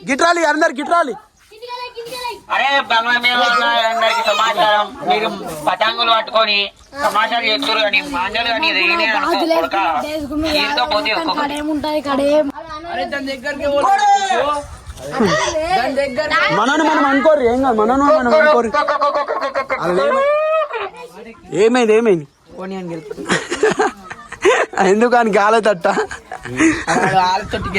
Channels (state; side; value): identical; both; correlation 1.00